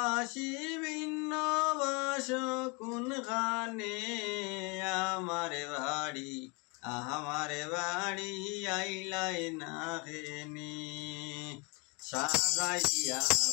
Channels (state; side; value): quieter; right; 30.6 dB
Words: ভিন্ন বাসো কোন গানে, আমার বাড়ি আইলাই না হেনি। সাজাইয়া